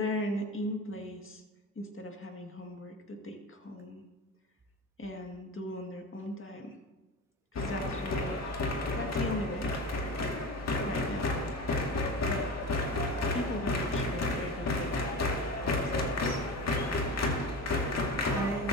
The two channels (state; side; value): normal; both; correlation 0.28